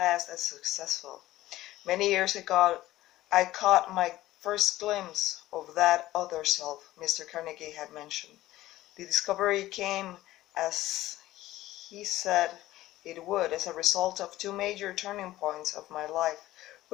as successful. Many years ago, I caught my first glimpse of that other self Mr. Carnegie had mentioned. The discovery came, as he said it would, as a result of two major turning points of my life,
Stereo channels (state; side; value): quieter; right; 15.8 dB